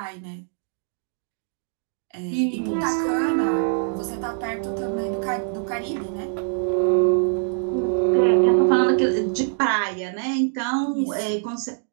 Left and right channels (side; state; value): left; silent; digital silence